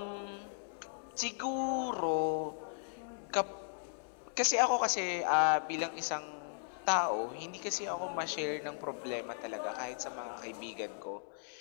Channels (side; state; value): right; silent; digital silence